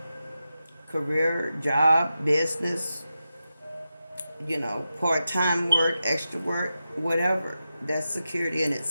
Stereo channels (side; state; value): both; inverted; correlation -0.91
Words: career, job, business, you know, part-time work, extra work, whatever. That's security in its